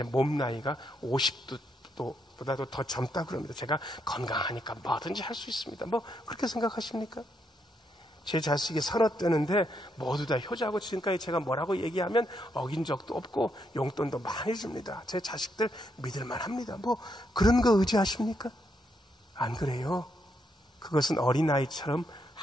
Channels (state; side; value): normal; both; correlation 0.78